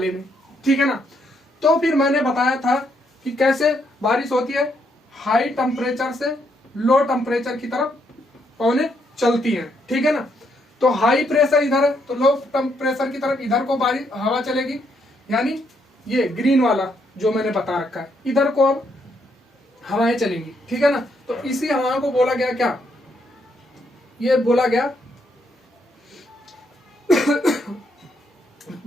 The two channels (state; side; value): normal; both; correlation 0.75